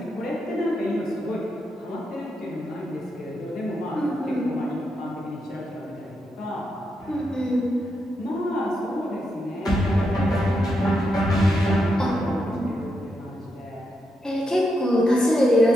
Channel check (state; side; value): normal; both; correlation 0.83